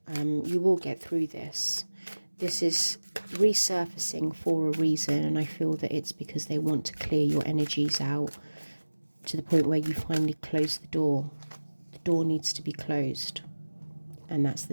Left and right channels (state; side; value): inverted; both; correlation -1.00